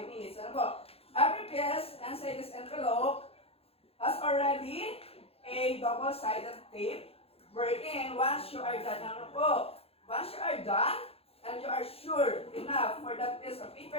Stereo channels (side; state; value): right; late; 0.28 ms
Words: minutes. Ano po? Every piece inside this envelope has already a double-sided tape. Wherein, once you are done, ano po? Once you are done, and you are sure enough for that piece of